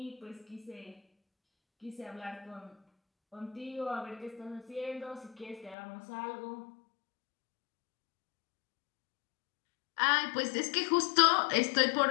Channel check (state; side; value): drops out; right; at 5.8 s